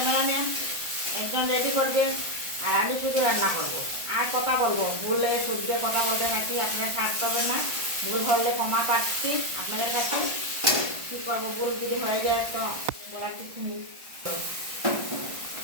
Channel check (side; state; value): left; late; 1.5 ms